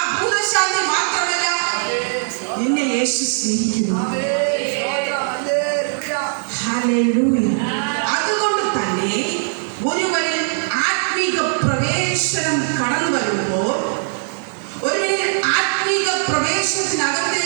ഭൂതശാന്തി മാത്രമല്ല, നിന്നെ യേശു സ്നേഹിക്കുന്നു. ഹല്ലേലൂയ. അതുകൊണ്ട് തന്നെ ഒരുവനിൽ ആത്മീക പ്രവേശനം കടന്നു വരുമ്പോൾ, ഒരുവനിൽ ആത്മീക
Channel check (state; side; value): silent; left; 66 dB below the other